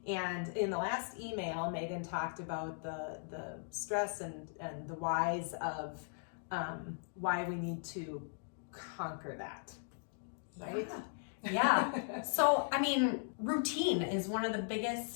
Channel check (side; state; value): right; silent; digital silence